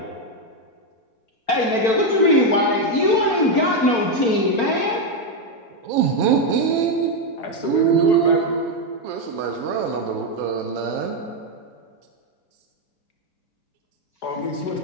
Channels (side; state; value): right; late; 4.4 ms